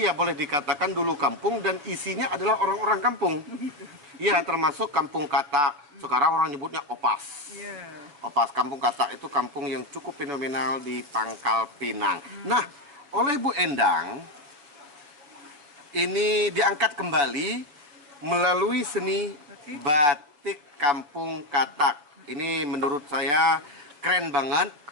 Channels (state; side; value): late; left; 6.9 ms